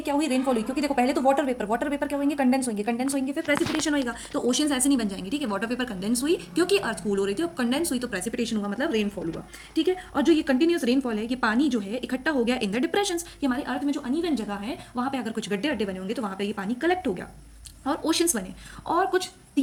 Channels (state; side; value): identical; both; correlation 1.00